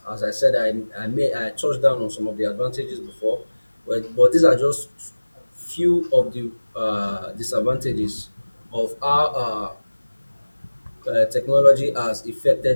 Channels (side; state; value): both; inverted; correlation -1.00